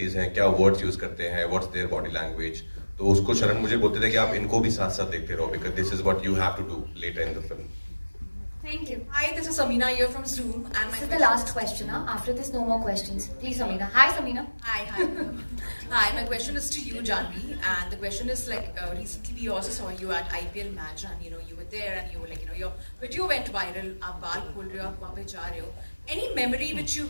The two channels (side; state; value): both; inverted; correlation -1.00